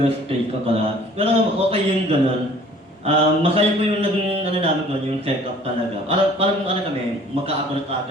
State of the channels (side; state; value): both; normal; correlation 0.52